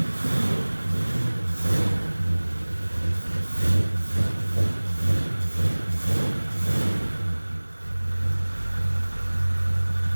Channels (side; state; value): both; inverted; correlation -1.00